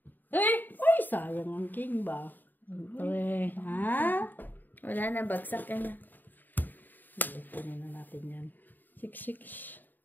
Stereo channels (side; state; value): right; late; 0.089 ms